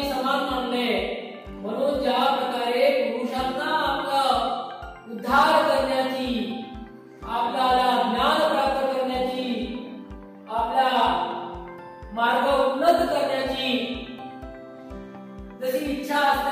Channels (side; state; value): both; identical; correlation 1.00